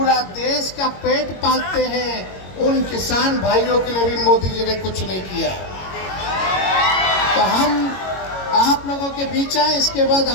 देश का पेट पालते हैं। उन किसान भाइयों के लिए भी मोदी जी ने कुछ नहीं किया। तो हम आप लोगों के बीच हैं, इसके बाद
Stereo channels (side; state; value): right; late; 22 ms